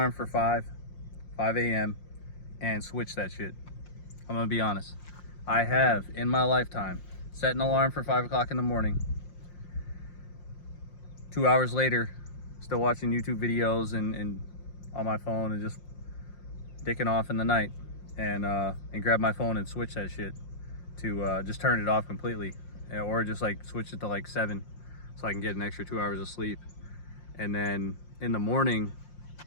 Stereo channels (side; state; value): right; late; 5.7 ms